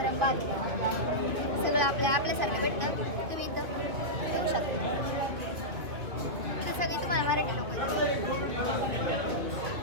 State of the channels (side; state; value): left; late; 2.3 ms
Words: भात सगळं आपल्यासारखं भेटतं. तुम्ही इथं येऊ शकता. इथं सगळी तुम्हाला मराठी लोक